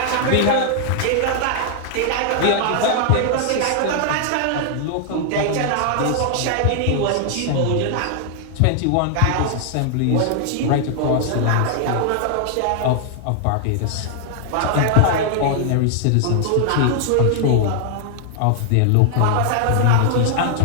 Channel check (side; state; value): both; different; correlation 0.00